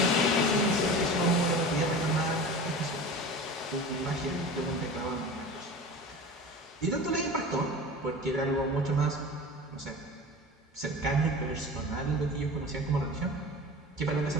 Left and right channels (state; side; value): normal; both; correlation 0.34